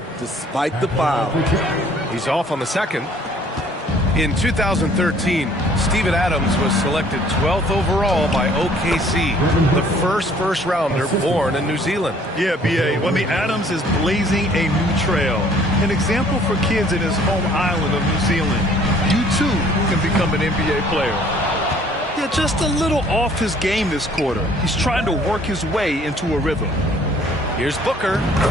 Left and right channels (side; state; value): both; normal; correlation 0.57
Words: despite the foul. He's off on the second. In 2013, Steven Adams was selected 12th overall by OKC, the first rounder born in New Zealand. Yeah, B.A. Well, I mean, Adams is blazing a new trail. An example for kids in his home island of New Zealand. You, too, can become an NBA player. Yeah, just a little off his game this quarter. He's trying to work his way into a rhythm. Here's Booker.